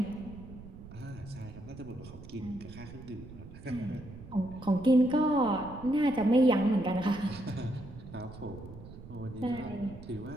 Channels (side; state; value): right; noise; rumble, 15 dB below the sound